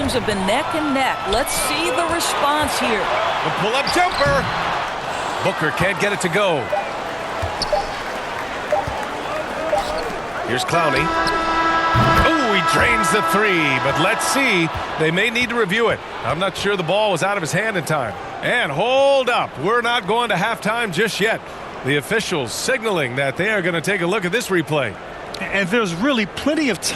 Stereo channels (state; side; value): identical; both; correlation 1.00